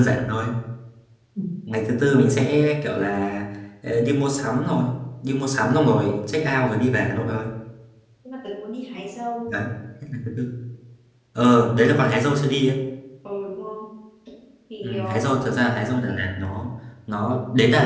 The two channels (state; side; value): identical; both; correlation 1.00